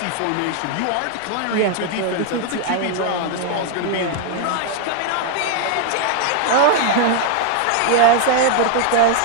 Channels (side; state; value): both; different; correlation 0.00